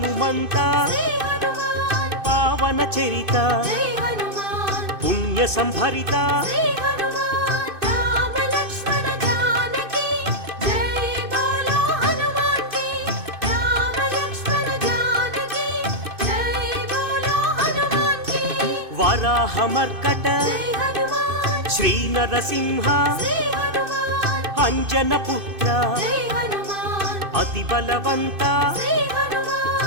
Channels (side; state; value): left; late; 2.6 ms